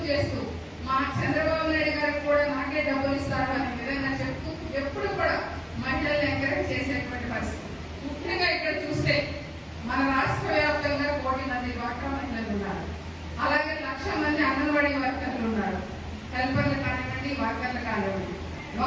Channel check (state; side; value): identical; both; correlation 1.00